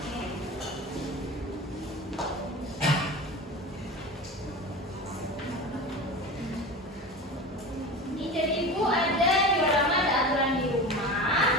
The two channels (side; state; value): both; normal; correlation 0.30